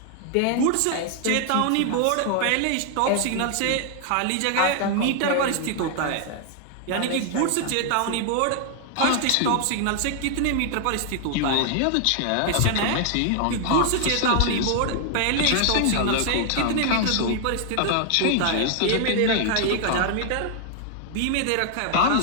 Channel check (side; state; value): both; different; correlation 0.00